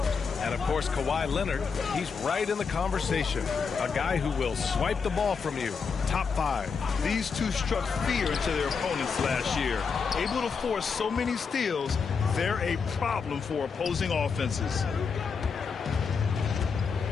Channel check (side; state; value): right; quieter; 5.6 dB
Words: And, of course, Kawhi Leonard, he's right in the conversation. A guy who will swipe the ball from you. Top 5. These two struck fear into their opponents last year. Able to force so many steals, they're a problem for opposing offenses.